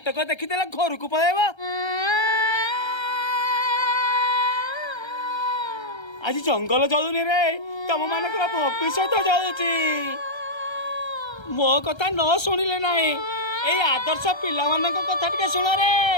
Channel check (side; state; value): right; late; 1.3 ms